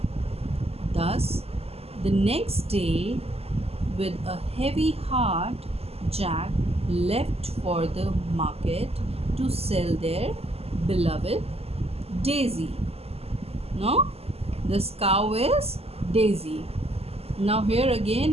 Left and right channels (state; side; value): late; left; 0.29 ms